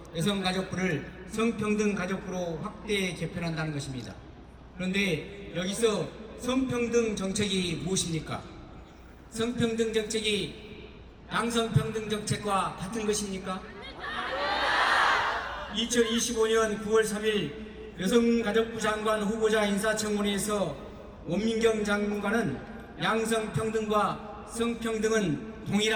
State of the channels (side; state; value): both; identical; correlation 1.00